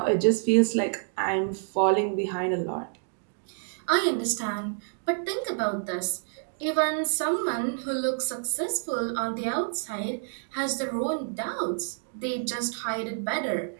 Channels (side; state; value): left; silent; digital silence